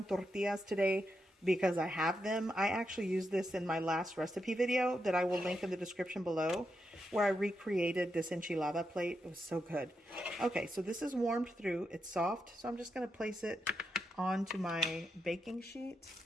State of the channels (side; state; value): both; normal; correlation 0.84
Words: tortillas today because I have them. I actually used this in my last recipe video that I will link in the description below, where I recreated this enchilada plate. It was so good. Okay, so this is warmed through. It's soft, so I'm just going to place it onto my baking sheet.